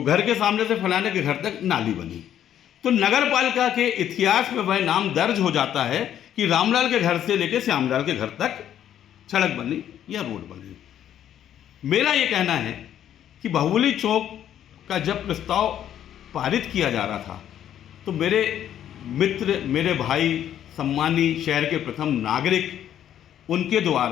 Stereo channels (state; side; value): quieter; right; 10.5 dB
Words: घर के सामने से फलाने के घर तक नाली बनी। तो नगर पालिका के इतिहास में वह नाम दर्ज हो जाता है कि रामलाल के घर से लेकर श्यामलाल के घर तक सड़क बनी या रोड बनी। मेरा ये कहना है कि बाहुबली चौक का जब प्रस्ताव पारित किया जा रहा था तो मेरे मित्र, मेरे भाई, सम्मानी शहर के प्रथम नागरिक, उनके